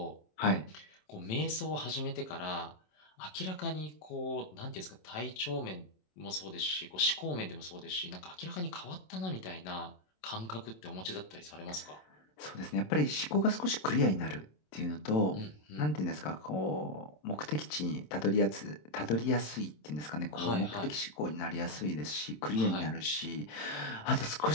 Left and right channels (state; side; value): late; right; 27 ms